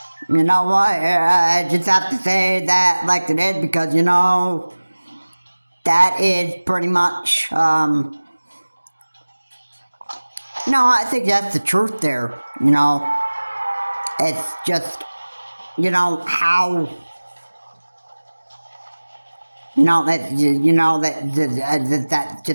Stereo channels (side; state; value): both; inverted; correlation -1.00